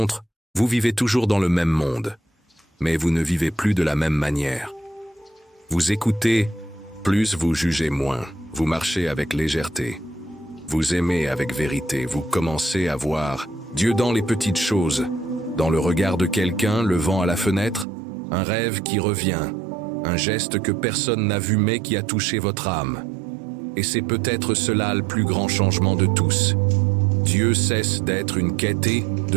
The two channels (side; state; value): left; drops out; at 17.9 s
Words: vous vivez toujours dans le même monde, mais vous ne vivez plus de la même manière. Vous écoutez, plus vous jugez moins, vous marchez avec légèreté, vous aimez avec vérité, vous commencez à voir Dieu dans les petites choses, dans le regard de quelqu'un, le vent à la fenêtre, un rêve qui revient, un geste que personne n'a vu mais qui a touché votre âme. Et c'est peut-être cela le plus grand changement de tous. Dieu cesse d'être une quête et